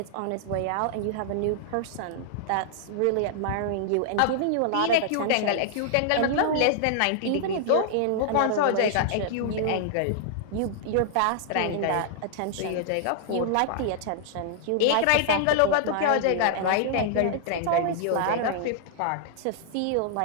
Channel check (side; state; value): both; different; correlation -0.01